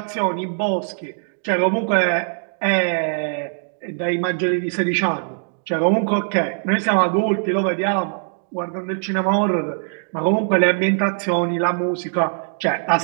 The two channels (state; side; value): silent; left; digital silence